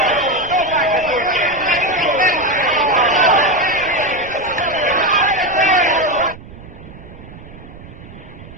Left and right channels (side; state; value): right; noise; rumble, 17 dB below the sound